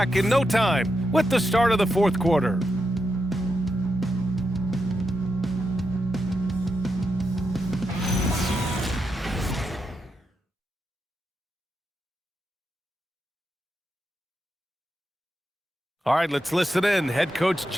in no time with the start of the 4th quarter. All right, let's listen in. Head coach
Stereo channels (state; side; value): normal; both; correlation 0.85